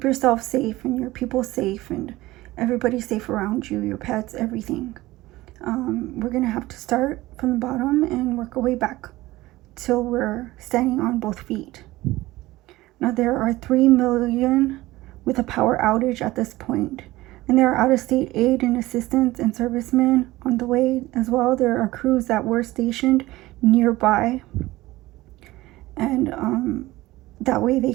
yourself safe and your people safe and everybody safe around you, your pets, everything. We're going to have to start from the bottom and work our way back till we're standing on both feet. Now, there are 3 million with a power outage at this point, and there are out-of-state aid and assistance and servicemen on the way as well. There are crews that were stationed nearby, and that way they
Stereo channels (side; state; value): left; quieter; 18.2 dB